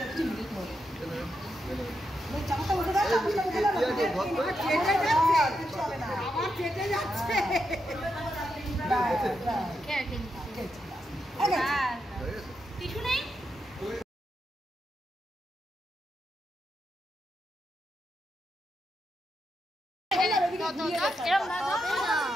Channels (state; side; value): normal; both; correlation 0.84